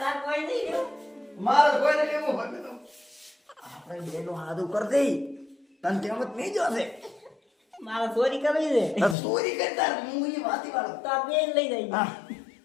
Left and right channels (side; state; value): right; drops out; at 9.2 s